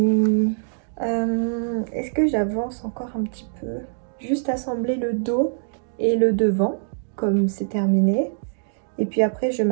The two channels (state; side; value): silent; left; digital silence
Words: Est-ce que j'avance encore un petit peu? Juste assembler le dos et le devant. Comme c'est terminé. Et puis après je